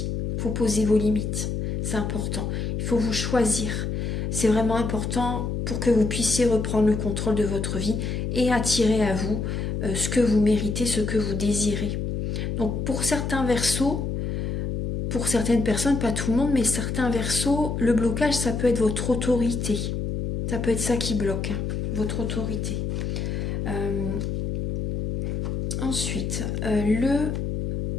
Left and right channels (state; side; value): noise; left; hum, 2 dB below the sound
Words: Il faut poser vos limites. C'est important. faut vous choisir. C'est vraiment important pour que vous puissiez reprendre le contrôle de votre vie et attirer à vous ce que vous méritez, ce que vous désirez. Donc pour certains Verseaux, pour certaines personnes, pas tout le monde, mais certains Verseaux, le blocage, ça peut être votre autorité. Ça peut être ça qui bloque, hein, votre autorité. Ensuite,